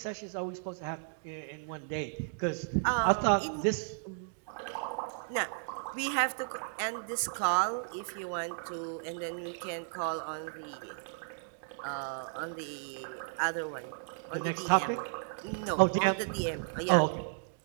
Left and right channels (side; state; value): left; silent; digital silence